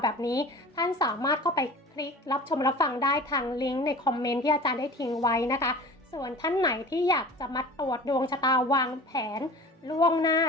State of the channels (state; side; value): normal; both; correlation 0.39